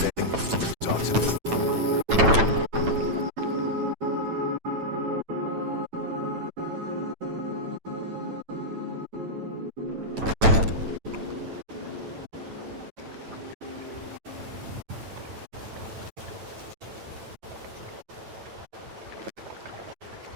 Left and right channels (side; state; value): left; late; 9.0 ms